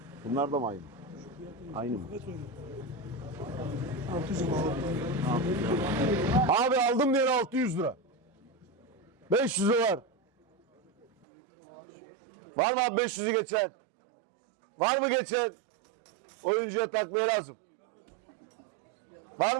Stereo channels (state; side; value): drops out; left; at 11.2 s